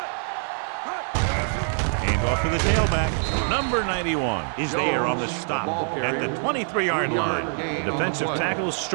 Hand off to the tailback. Number 91 is there on the stop at the 23-yard line. The defensive tackle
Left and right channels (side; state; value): left; silent; 61 dB below the other